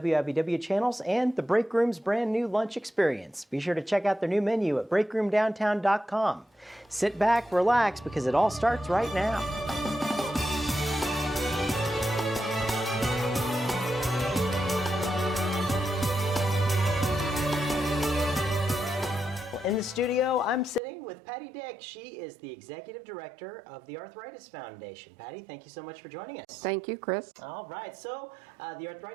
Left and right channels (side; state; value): left; drops out; at 20.8 s